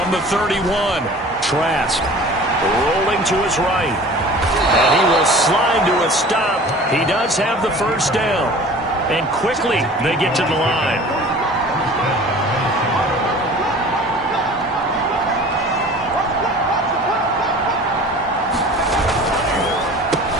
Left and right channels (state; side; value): normal; both; correlation 0.43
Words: the 31, Trask rolling to his right. And he will slide to a stop. He does have the first down. And quickly they get to the line.